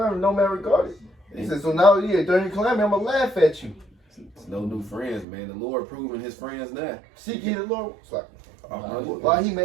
no man regarded. He said, so now, during your calamity, I'm going to laugh at you. It's no new friends, man. The Lord proving his friends now. Seek ye the Lord. It's like, Uh-huh. why he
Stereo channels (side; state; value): left; drops out; at 5.2 s